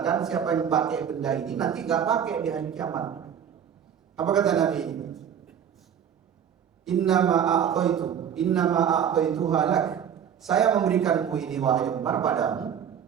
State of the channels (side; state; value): left; quieter; 8.5 dB